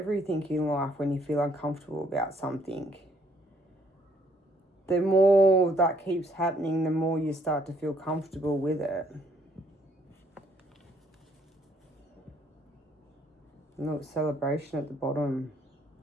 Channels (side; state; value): both; normal; correlation 0.66